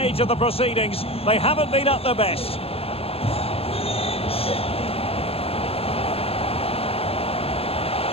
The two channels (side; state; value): right; late; 0.28 ms